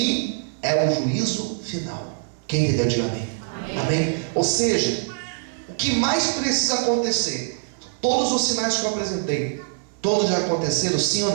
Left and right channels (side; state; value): left; silent; digital silence